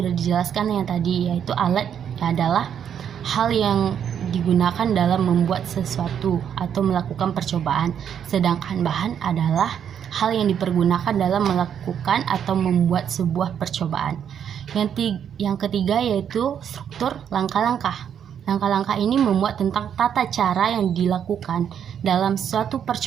dijelaskan yang tadi, yaitu alat adalah hal yang digunakan dalam membuat sesuatu atau melakukan percobaan, sedangkan bahan adalah hal yang dipergunakan dalam melakukan atau membuat sebuah percobaan. Yang ketiga yaitu struktur langkah-langkah. Langkah-langkah ini memuat tentang tata cara yang dilakukan dalam suatu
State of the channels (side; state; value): left; quieter; 8.6 dB